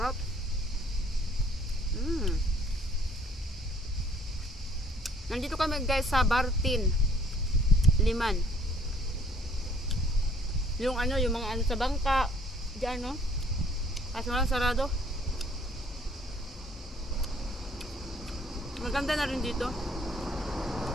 Nandito kami guys sa Bartin Liman. Yung ano, yung mga ano sa bangka diyan no. Kaso lang sarado. Maganda na rin dito.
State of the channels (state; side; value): normal; both; correlation 0.59